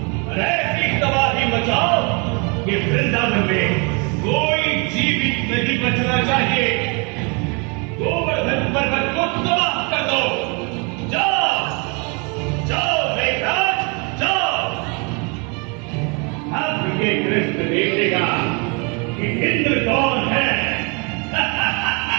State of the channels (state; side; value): quieter; left; 32.6 dB